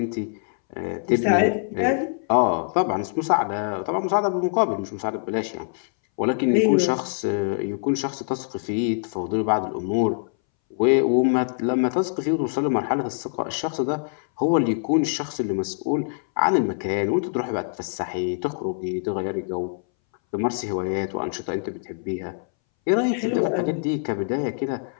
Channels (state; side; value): silent; right; 61 dB below the other